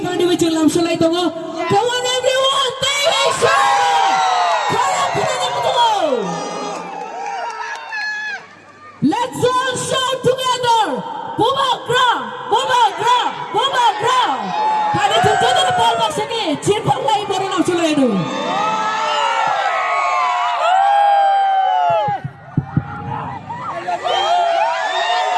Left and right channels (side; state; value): both; identical; correlation 1.00